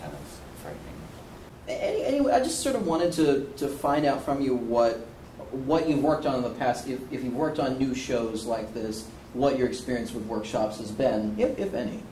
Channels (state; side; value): identical; both; correlation 1.00